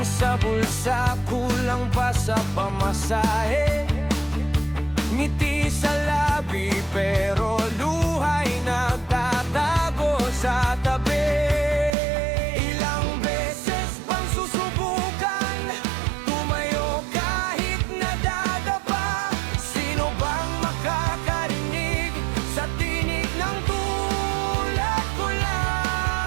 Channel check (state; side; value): drops out; left; at 11.9 s